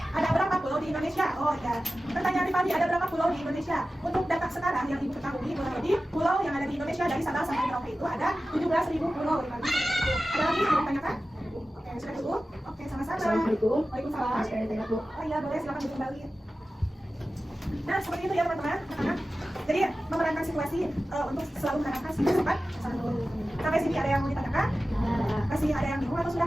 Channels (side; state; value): both; normal; correlation 0.95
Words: Ada berapa pulau di Indonesia? Oh ya. Pertanyaan Rifandi, ada berapa pulau di Indonesia? Untuk data sekarang yang ibu ketahui, kurang lebih pulau yang ada di Indonesia dari Sabang sampai Merauke itu ada 17.000 pulau. Rifandi. Ada lagi yang mau ditanyakan? Oke, sudah cukup? Oke, sama-sama. Assalamualaikum. Waalaikumsalam. Sekali lagi, Bu. Oh iya, boleh, silakan duduk kembali. Nah, seperti itu ya teman-teman. Jadi memerankan situasi untuk selalu menerapkan sikap sopan santun. Sampai sini ada yang mau ditanyakan? Masih ada yang bingung atau sudah